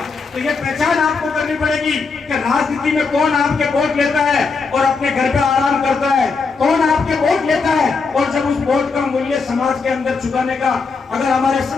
तो ये पहचान आपको करनी पड़ेगी कि राजनीति में कौन आपके वोट लेता है और अपने घर पे आराम करता है, कौन आपके वोट लेता है और जब उस वोट का मूल्य समाज के अंदर चुकाने का, अगर हमारे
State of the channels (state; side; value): quieter; right; 4.7 dB